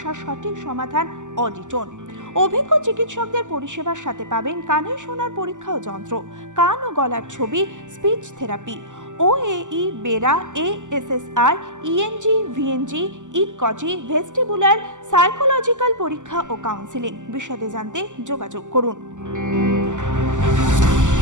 সঠিক সমাধান অডিটন। অভিজ্ঞ চিকিৎসকদের পরিষেবার সাথে পাবেন কানে শোনার পরীক্ষা ও যন্ত্র, কান ও গলার ছবি, speech therapy, OAE, BERA, ASSR, ENG, VNG, ইকজি, ভেস্টিবুলার, সাইকোলজিক্যাল পরীক্ষা ও কাউন্সিলিং। বিশদে জানতে যোগাযোগ করুন।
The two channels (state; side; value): late; left; 0.86 ms